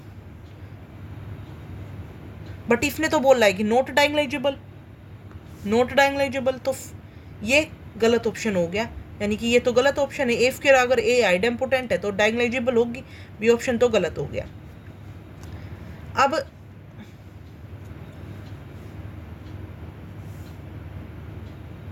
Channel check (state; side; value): identical; both; correlation 1.00